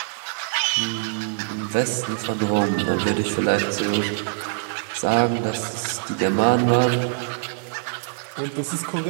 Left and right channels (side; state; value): left; silent; 59 dB below the other